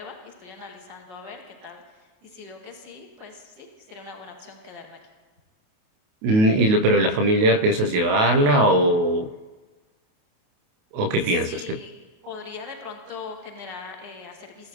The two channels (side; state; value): left; late; 28 ms